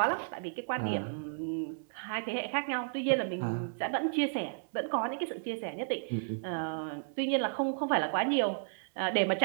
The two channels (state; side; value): silent; left; 56 dB below the other